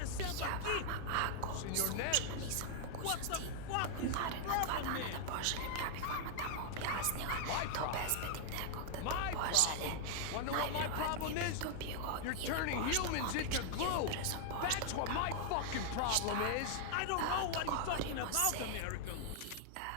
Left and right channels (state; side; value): different; both; correlation 0.00